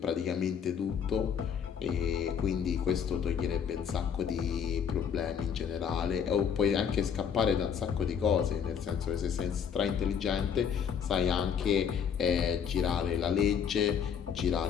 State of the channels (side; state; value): right; quieter; 7.5 dB